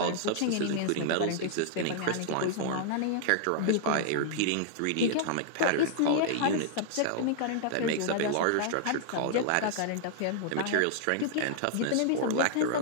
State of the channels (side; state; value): both; different; correlation -0.01